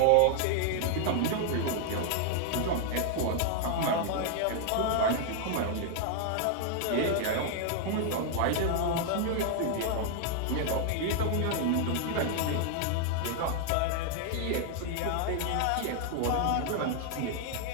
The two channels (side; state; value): both; different; correlation 0.00